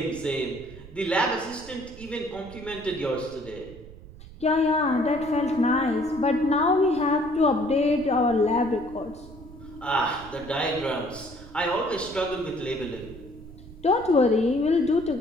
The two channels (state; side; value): noise; right; rumble, 18 dB below the sound